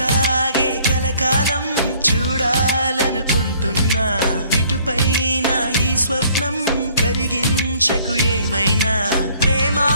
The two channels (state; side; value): inverted; both; correlation -0.60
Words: కలకాలం చూడాలనుకుంటున్నా ఇటుపైన ఈ స్వప్నం కరిగించకు ఏమైనా ప్రేమ